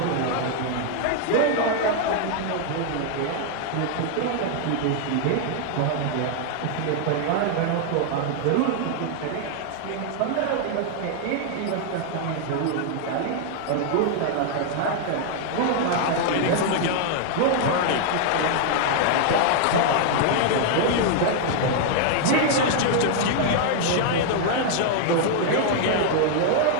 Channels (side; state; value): both; different; correlation 0.00